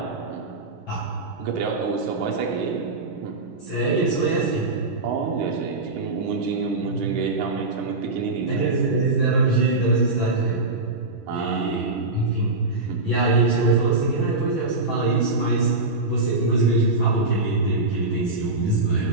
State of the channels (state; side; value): quieter; left; 3.2 dB